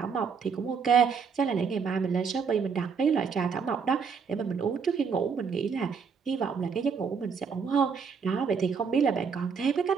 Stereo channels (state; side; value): quieter; left; 6.0 dB